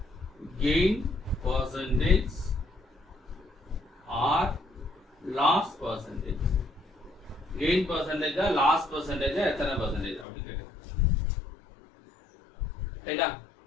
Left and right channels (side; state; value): right; drops out; at 10.2 s